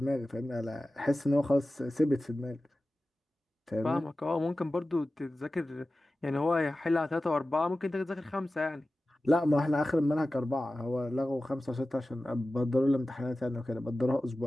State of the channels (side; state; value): both; normal; correlation 0.95